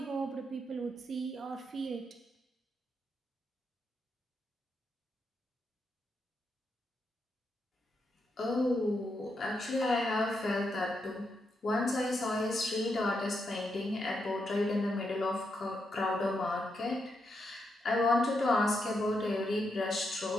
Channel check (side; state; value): both; normal; correlation 0.82